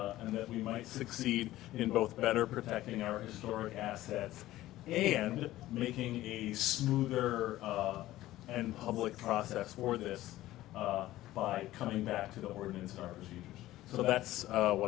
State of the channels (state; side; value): quieter; right; 15.5 dB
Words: and that we might succeed in both better protecting our historic assets and making a smoother and public process for this by coming back to the ordinance and our procedures. So that's what